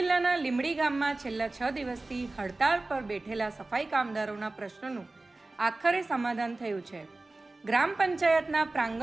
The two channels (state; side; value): quieter; left; 3.1 dB